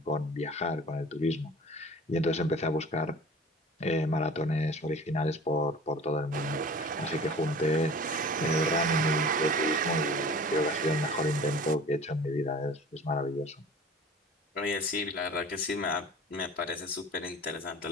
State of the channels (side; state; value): both; normal; correlation 0.43